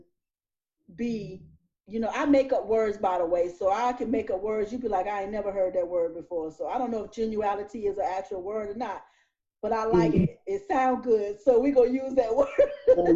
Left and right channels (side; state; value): both; identical; correlation 1.00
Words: be. I make up words, by the way, so I can make up words. You'd be like, I ain't never heard that word before. So I don't know if genuality is an actual word or not, but I like Mhm. it. It sounds good, so we gonna use that word.